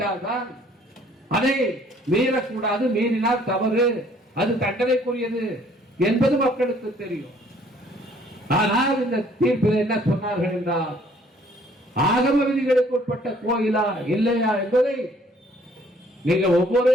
அதை மீறக்கூடாது, மீறினால் தவறு, அது தண்டனைக்குரியது என்பது மக்களுக்கு தெரியும். ஆனால் இந்த தீர்ப்பில் என்ன சொன்னார்கள் என்றால், ஆகம விதிகளுக்கு உட்பட்ட கோயிலா இல்லையா என்பதை நீங்கள் ஒவ்வொரு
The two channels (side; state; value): both; normal; correlation 0.60